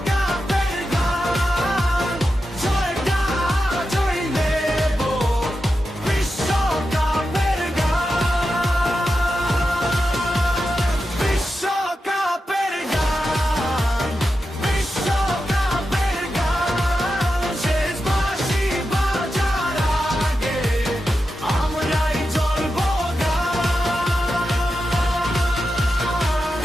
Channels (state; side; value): normal; both; correlation 0.90